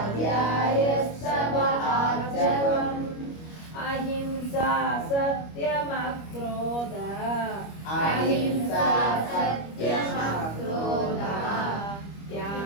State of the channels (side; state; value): right; late; 25 ms